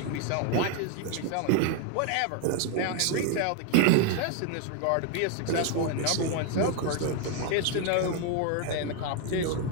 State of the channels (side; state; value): both; different; correlation 0.01